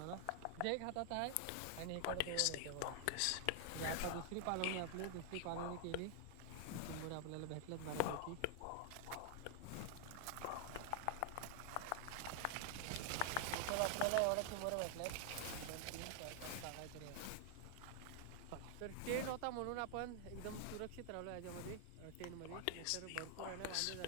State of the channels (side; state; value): both; different; correlation 0.00